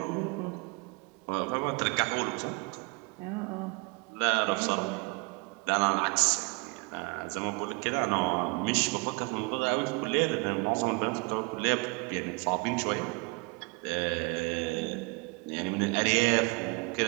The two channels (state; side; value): quieter; left; 29.4 dB